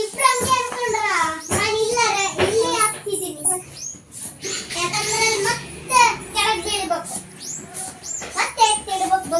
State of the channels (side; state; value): both; identical; correlation 1.00